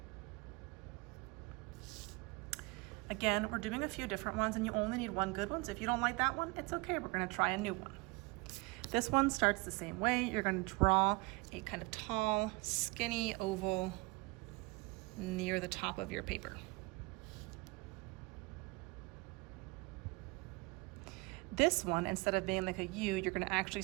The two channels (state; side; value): quieter; left; 26.0 dB